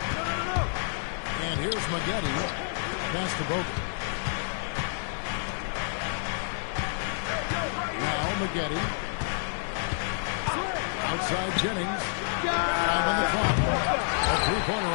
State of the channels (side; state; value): right; silent; digital silence